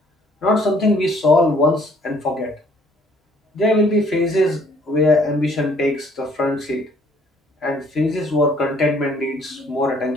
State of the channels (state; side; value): normal; both; correlation 0.61